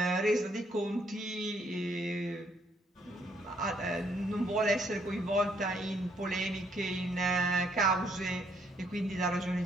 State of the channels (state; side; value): normal; both; correlation 0.69